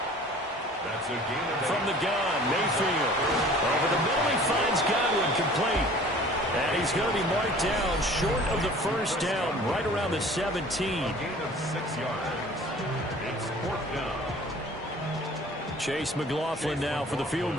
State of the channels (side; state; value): both; normal; correlation 0.48